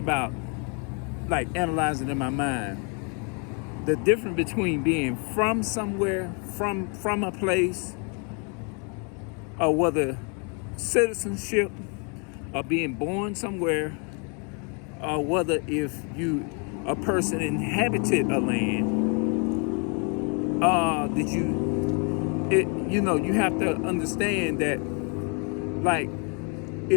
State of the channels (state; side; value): quieter; right; 36.6 dB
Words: about like analyzing in my mind the difference between being from somewhere, from a place, or whether citizenship or being born somewhere, or whether if you a person inhabited a land, did you have to understand that, like,